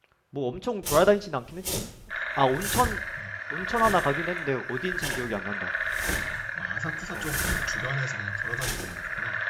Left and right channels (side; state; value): both; identical; correlation 1.00